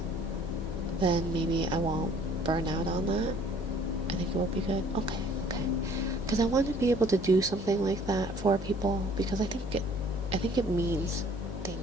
then maybe I won't burn out on that. I think it will be good. Okay, because I want to be able to do something like that for people, because I think it means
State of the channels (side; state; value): left; noise; hum, 9 dB below the sound